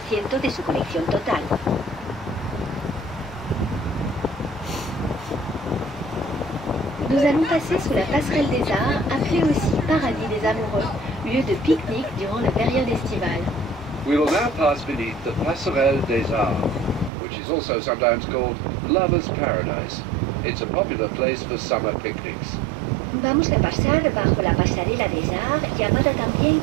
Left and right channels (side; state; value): left; drops out; at 17.1 s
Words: de su colección total. Nous allons passer sous la passerelle des arts, appelée aussi Paradis des amoureux, lieu de pique-nique durant la période estivale. We will now pass beneath the Passerelle des Arts, which is also sometimes called Lover's Paradise. It's a popular place for summer picnics. Vamos a pasar bajo la pasarela des Arts, llamada también